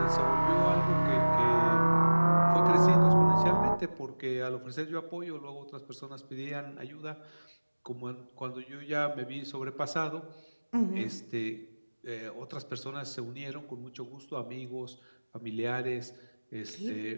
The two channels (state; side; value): inverted; both; correlation -1.00